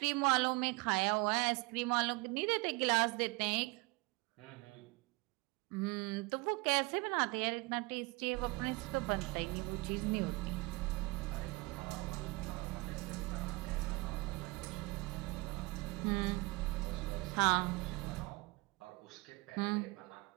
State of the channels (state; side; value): quieter; left; 25.2 dB